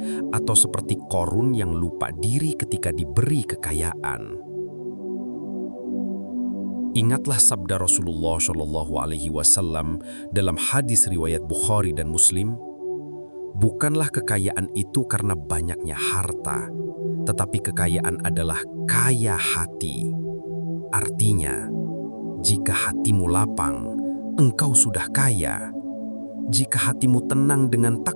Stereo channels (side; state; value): both; inverted; correlation -1.00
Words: atau seperti Qorun yang lupa diri ketika diberi kekayaan? Ingatlah sabda Rasulullah SAW dalam hadis riwayat Bukhari dan Muslim, "Bukanlah kekayaan itu karena banyaknya harta, tetapi kekayaan adalah kaya hati." Artinya, jika hatimu lapang, engkau sudah kaya. Jika hatimu tenang dengan